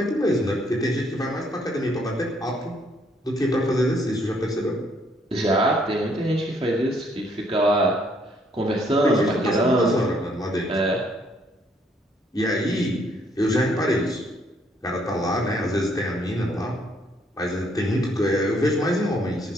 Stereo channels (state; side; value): normal; both; correlation 0.68